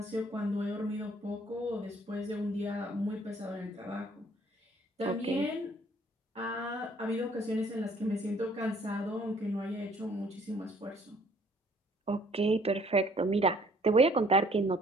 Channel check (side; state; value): both; normal; correlation 0.60